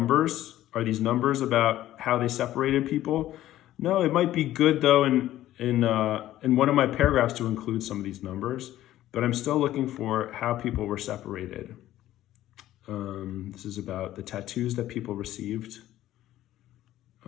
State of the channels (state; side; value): quieter; right; 13.8 dB